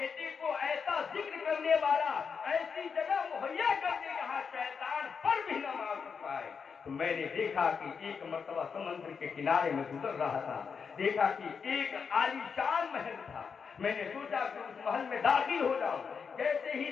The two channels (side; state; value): right; quieter; 6.0 dB